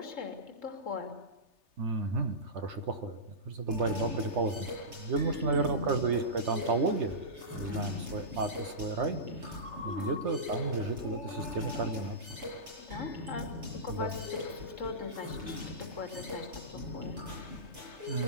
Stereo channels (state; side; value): late; left; 3.3 ms